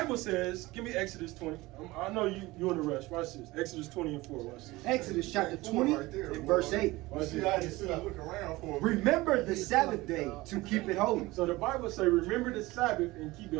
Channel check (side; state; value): left; quieter; 20.2 dB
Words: says, give me Exodus 20. I know you in a rush. Watch this. Exodus 20 and 4. Watch this. Exodus chapter 20 Right there, and boy. verse 8. You see, I just sit and look around for a minute. Remember the Sabbath day to keep it holy. So the Bible say, remember the Sabbath and keep